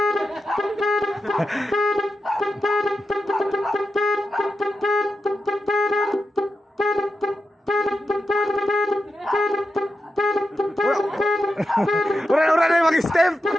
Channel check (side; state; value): both; normal; correlation 0.88